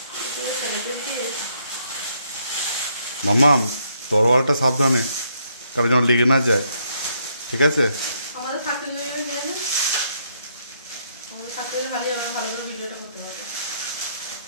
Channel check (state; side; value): inverted; both; correlation -0.73